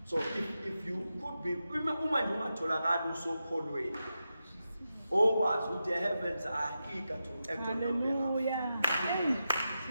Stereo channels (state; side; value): inverted; both; correlation -0.89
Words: So if you could be uma nje ungatholakala usokholweni, okwazi ukuthi the heavens are eager to act on your behalf. Hallelujah. Hey,